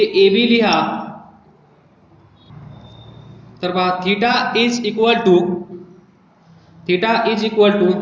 AB लिहा. तर पहा, theta is equal to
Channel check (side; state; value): both; identical; correlation 1.00